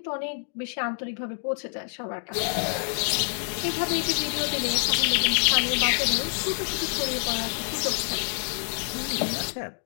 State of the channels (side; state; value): right; silent; digital silence